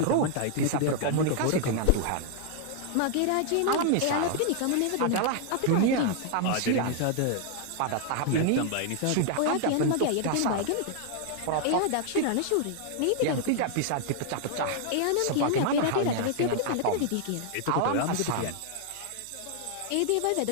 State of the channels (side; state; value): both; different; correlation 0.00